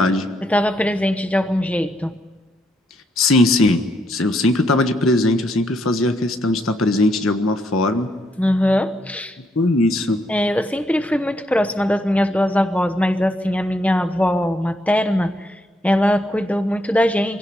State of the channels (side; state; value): both; normal; correlation 0.75